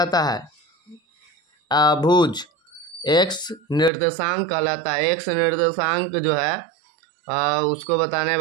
है, भुज। एक्स निर्देशांक कहलाता है, एक्स निर्देशांक जो है उसको बताने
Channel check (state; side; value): drops out; left; at 3.9 s